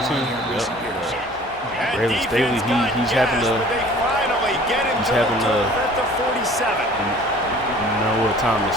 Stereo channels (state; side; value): normal; both; correlation 0.49